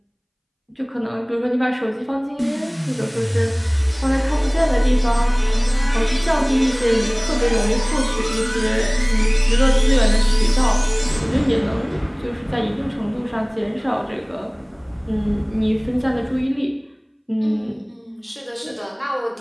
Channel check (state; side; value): identical; both; correlation 1.00